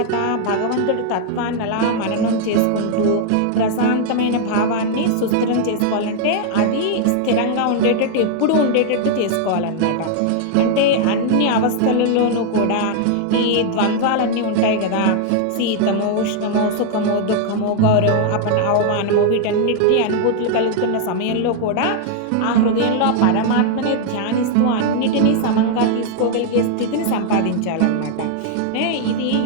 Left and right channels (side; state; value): both; different; correlation 0.00